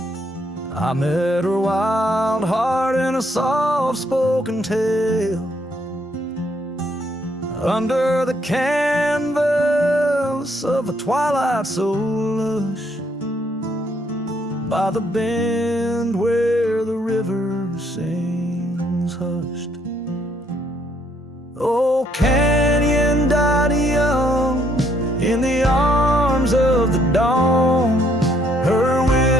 I met her wild heart in a soft-spoken tale. Under the canvas of a twilight so lush, by the bend where the river sings hushed. Oh, canyon died young in the arms of the dawn. Her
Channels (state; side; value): normal; both; correlation 0.69